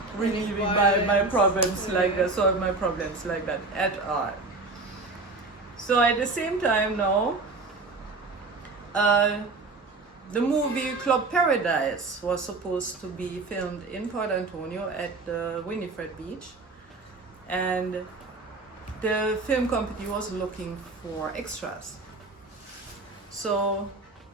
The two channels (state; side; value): quieter; left; 3.5 dB